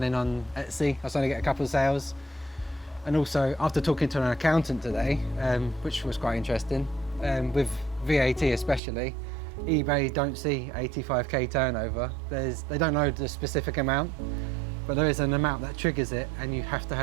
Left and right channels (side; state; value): left; drops out; at 8.8 s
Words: on Etsy. I suddenly get a couple of sales. And also, after talking to an accountant today, which was quite interesting, with VAT especially, eBay don't see 85k turnover. They don't know the specific amount, but there is an amount that triggers it, and you have to